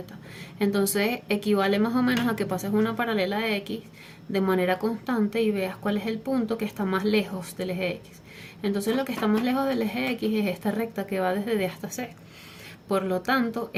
Entonces equivale más o menos a que pases una paralela de X de manera constante y veas cuál es el punto que está más lejos del eje X. Entonces lo que está más lejos del eje X es esta recta que va desde D hasta C. Por lo tanto,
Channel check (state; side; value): identical; both; correlation 1.00